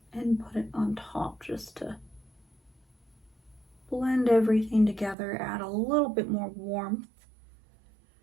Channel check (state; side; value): drops out; left; at 5.2 s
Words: and put it on top just to blend everything together, add a little bit more warmth.